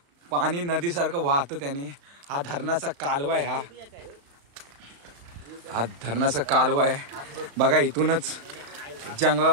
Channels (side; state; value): left; late; 35 ms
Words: पाणी नदीसारखं वाहतं त्याने। हा धरणाचा कालवा आहे, हा धरणाचा कालवा आहे। बघा, इथूनच